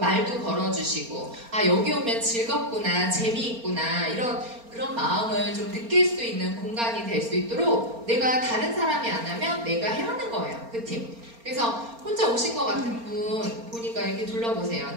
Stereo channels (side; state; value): left; late; 4.3 ms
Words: 걸어주시고, 여기 오면 즐겁구나, 재미있구나, 그런 마음을 좀 느낄 수 있는 공간이 될 수 있도록, 내가 다른 사람이 안 하면 내가 해야 하는 거예요. 그 팀. 그래서 혼자 오신 것 같은 분 보니까 이렇게 둘러보세요.